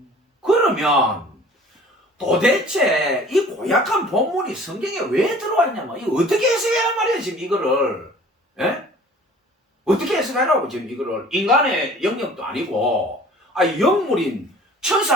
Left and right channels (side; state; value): both; normal; correlation 0.48